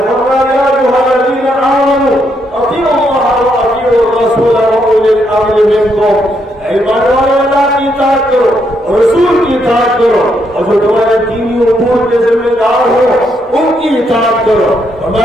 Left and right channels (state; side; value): normal; both; correlation 0.76